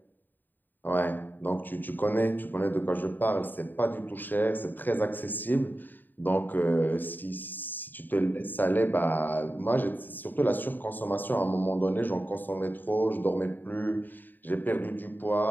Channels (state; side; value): late; right; 0.090 ms